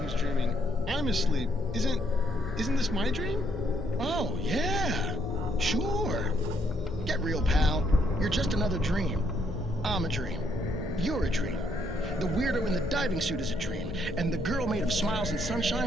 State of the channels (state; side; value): normal; both; correlation 0.72